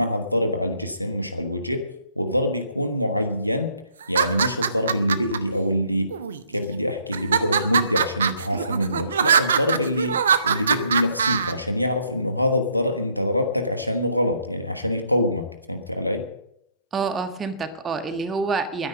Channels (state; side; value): inverted; both; correlation -0.65